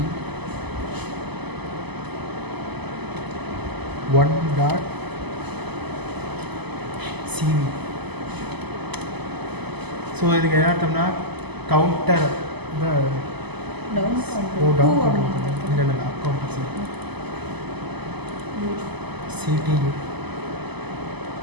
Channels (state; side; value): late; left; 0.99 ms